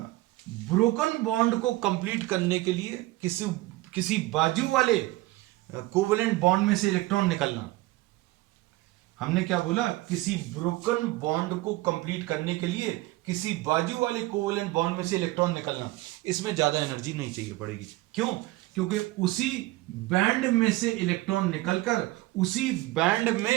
बॉन्ड को कंप्लीट करने के लिए किसी बाजू वाले कोवेलेंट बॉन्ड में से इलेक्ट्रॉन निकलना, हमने क्या बोला, किसी ब्रोकन बॉन्ड को कंप्लीट करने के लिए किसी बाजू वाले कोवेलेंट बॉन्ड में से इलेक्ट्रॉन निकलना, इसमें ज्यादा एनर्जी नहीं चाहिए पड़ेगी। क्यों, क्योंकि उसी बैंड में से इलेक्ट्रॉन निकलकर उसी बैंड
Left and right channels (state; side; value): quieter; left; 18.9 dB